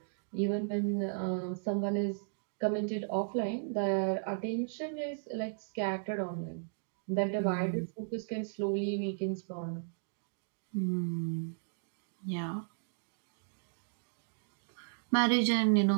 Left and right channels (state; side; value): silent; left; digital silence